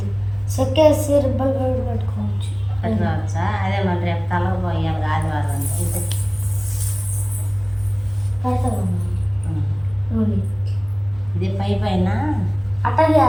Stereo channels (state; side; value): noise; right; rumble, 23 dB below the sound